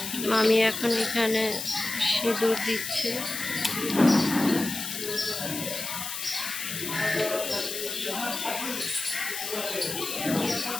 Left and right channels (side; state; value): left; noise; hiss, 5 dB below the sound